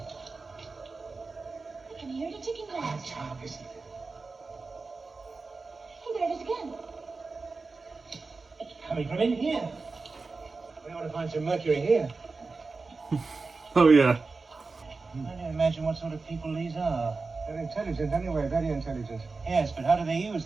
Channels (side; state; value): left; quieter; 4.0 dB